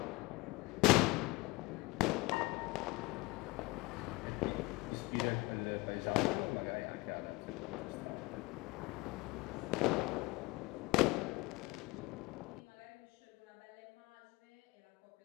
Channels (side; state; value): right; quieter; 22.8 dB